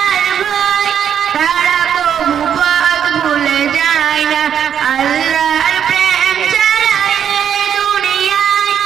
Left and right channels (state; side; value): quieter; left; 8.7 dB